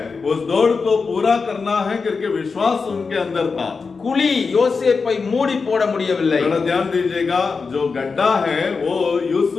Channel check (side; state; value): right; quieter; 4.8 dB